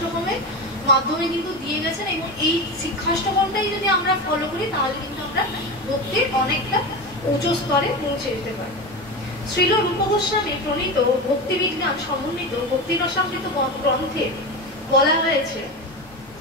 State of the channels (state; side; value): normal; both; correlation 0.22